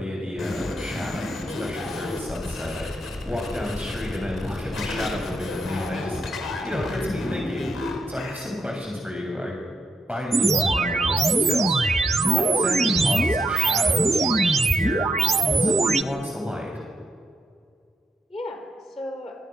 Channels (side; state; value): both; normal; correlation 0.80